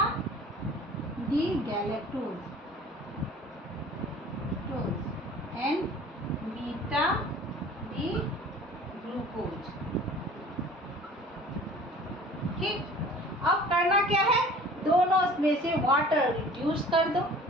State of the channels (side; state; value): both; normal; correlation 0.46